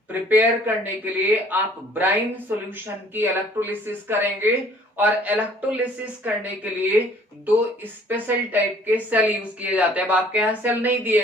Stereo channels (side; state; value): both; normal; correlation 0.56